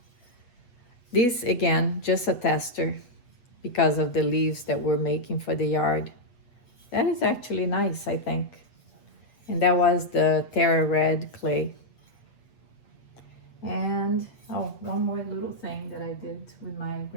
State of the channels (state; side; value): late; right; 8.2 ms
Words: This again, just a tester because of the leaves that we're making for the yard. That is actually nice, I think. And that was the Terra Red clay. And oh, one more little thing that I did with my